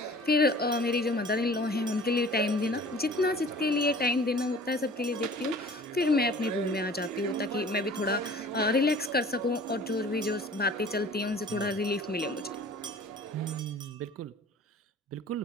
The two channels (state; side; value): normal; both; correlation 0.46